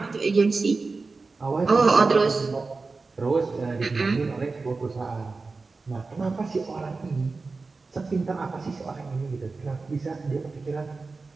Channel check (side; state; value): left; quieter; 4.0 dB